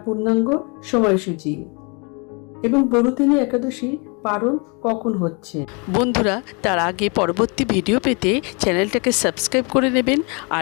পূর্ণাঙ্গ সময়সূচি এবং বরুদিনী একাদশী পালন কখন হচ্ছে। বন্ধুরা, তার আগে পরবর্তী ভিডিও পেতে চ্যানেলটাকে সাবস্ক্রাইব করে নেবেন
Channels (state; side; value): quieter; right; 32.4 dB